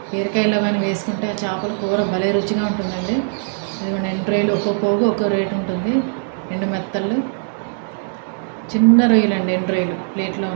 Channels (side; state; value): left; silent; digital silence